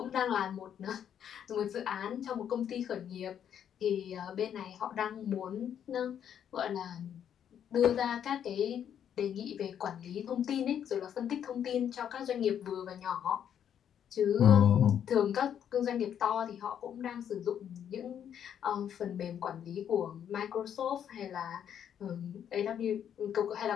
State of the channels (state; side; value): quieter; right; 9.1 dB